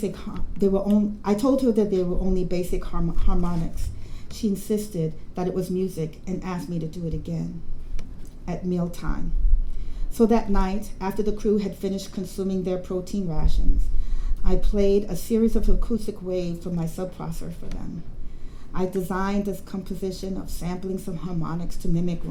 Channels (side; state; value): both; identical; correlation 1.00